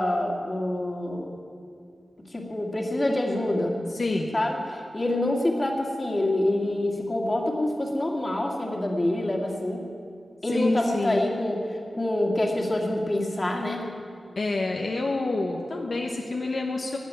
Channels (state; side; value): normal; both; correlation 0.95